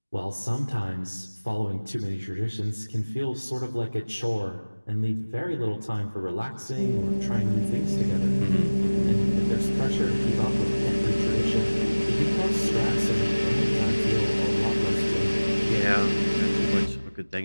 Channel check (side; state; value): both; inverted; correlation -1.00